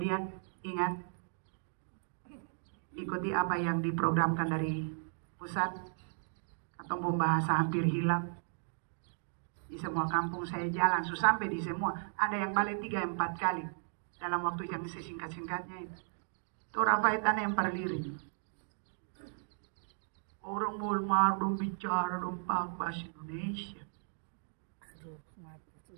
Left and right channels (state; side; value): silent; left; digital silence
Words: ingat, ikuti apa yang diprogramkan dari pusat, atau bahasa hampir hilang. Di semua kampung saya jalan, sampai di semua, ada yang balik 3-4 kali, dalam waktu yang sesingkat-singkatnya itu. Itu rapaitan yang perlirik. Orang mulmar dong bicara dong bahasa Indonesia.